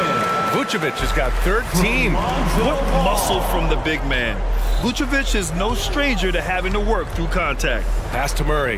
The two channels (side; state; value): both; identical; correlation 1.00